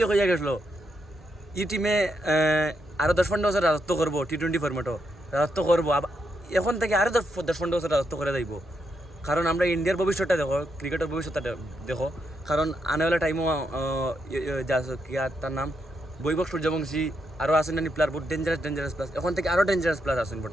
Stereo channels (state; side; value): normal; both; correlation 0.81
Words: হইয়া গেছিলো এই টিমে আরও 10-15 বছর রাজত্ব করবো T20 ফরম্যাটও রাজত্ব করবো এখন থেকে আরও 10-15 বছর রাজত্ব করে যাইব কারণ আমরা ইন্ডিয়ার ভবিষ্যৎটা দেখো ক্রিকেটের ভবিষ্যৎটা দেখো কারণ আনেওয়ালা টাইমও তার নাম বৈভব সূর্যবংশী আরও আসেন নানি প্লেয়ার বহুত ডেঞ্জারাস প্লাস এখন থেকে আরও ডেঞ্জারাস প্লেয়ার আসেন